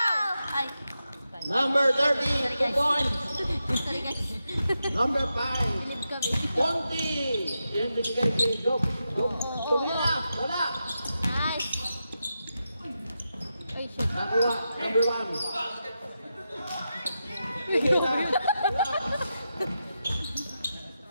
Ay! Number 30. 2 points. Sorry guys. Number 5. Bilib kami. Ponte. Yan binigay kay Job. Tumira. Wala. Nice! Ay, shit. Nakuha. Number 1. Tumira.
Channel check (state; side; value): inverted; both; correlation -0.88